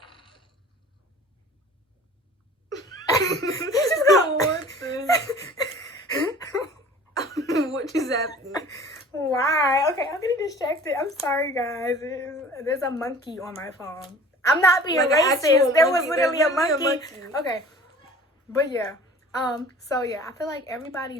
just got one thing. What just happened? Why? Okay, I'm getting distracted. I'm sorry, guys. There's a monkey on my phone. I'm not being racist. There was literally a monkey. Okay. But yeah. So yeah, I feel like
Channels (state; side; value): normal; both; correlation 0.46